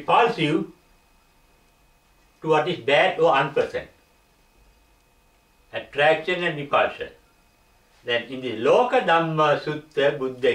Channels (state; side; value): identical; both; correlation 1.00